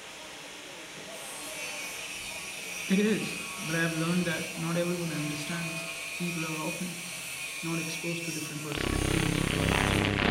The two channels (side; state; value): both; identical; correlation 1.00